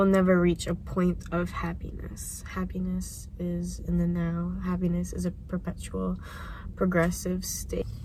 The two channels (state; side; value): identical; both; correlation 1.00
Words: never reach a point of happiness. Happiness is in the now. Happiness is a perpetual, progressive state.